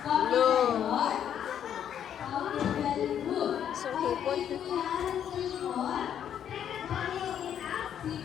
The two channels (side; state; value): right; quieter; 9.4 dB